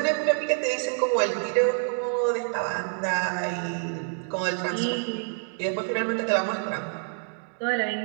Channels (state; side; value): silent; left; digital silence